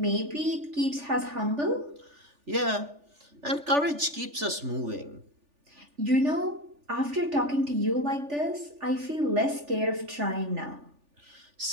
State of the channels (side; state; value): left; late; 3.4 ms